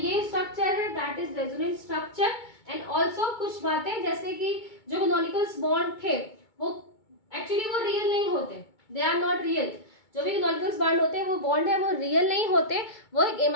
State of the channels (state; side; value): late; right; 2.2 ms